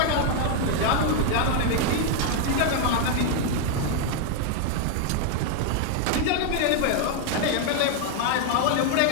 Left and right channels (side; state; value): both; different; correlation 0.00